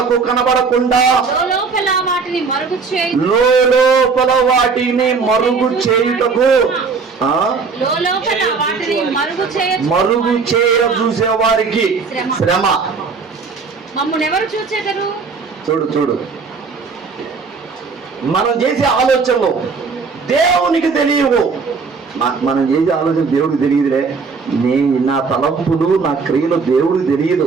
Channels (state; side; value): quieter; left; 4.9 dB